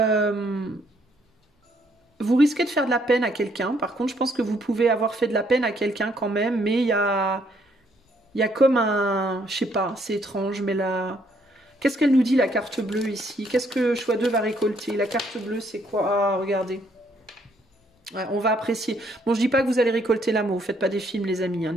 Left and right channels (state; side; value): normal; both; correlation 0.69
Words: vous risquez de faire de la peine à quelqu'un. Par contre, je pense que vous pouvez avoir fait de la peine à quelqu'un quand même. Mais il y a comme un... Je sais pas, c'est étrange. Mais là... Qu'est-ce qu'elle nous dit, la carte bleue, ici? Qu'est-ce que choix 2 va récolter? La carte bleue, c'est quoi? Ah, regardez. Ouais, on va apprécier. Bon, je dis pas que vous allez récolter l'amour. Faites pas des films, les amis, hein,